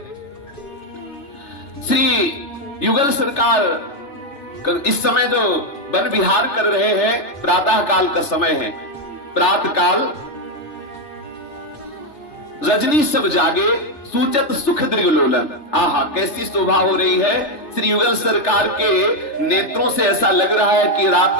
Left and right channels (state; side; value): late; right; 3.3 ms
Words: श्री युगल सरकार इस समय जो वन विहार कर रहे हैं, प्रातः काल का समय है, प्रातः काल रजनी सब जागे सूचत सुख दृगलोलन। आहा, कैसी शोभा हो रही है। श्री युगल सरकार के नेत्रों से ऐसा लग रहा है कि